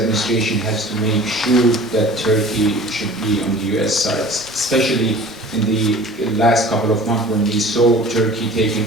has to make sure that Turkey should be on the U.S. side, especially in the last couple of months when we saw Turkey taking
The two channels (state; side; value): normal; both; correlation 0.43